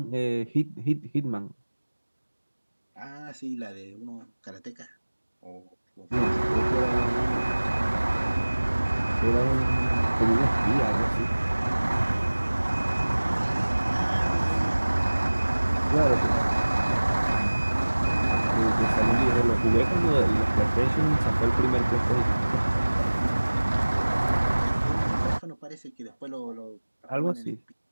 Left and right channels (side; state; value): both; inverted; correlation -1.00